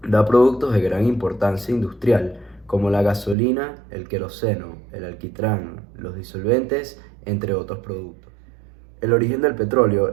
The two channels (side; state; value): left; drops out; at 3.4 s